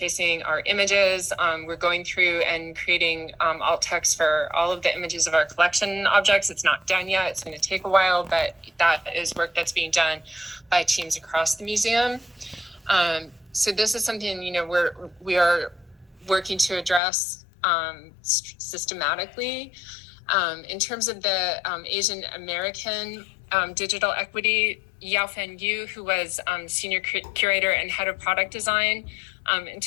our images. We're going through and creating alt text for all of the images of our collection objects. It's not done yet. It's going to take a while, but that is work that's being done by teams across the museum. So this is something, we are working to address systematically. In terms of the Asian American digital equity, Yaofan Yu, who was senior curator and head of product design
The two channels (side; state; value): right; drops out; at 17.0 s